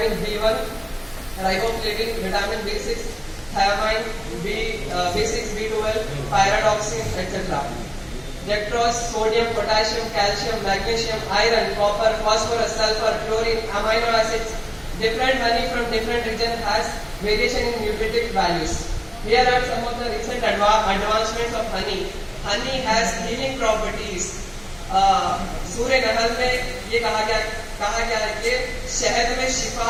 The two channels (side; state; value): both; identical; correlation 1.00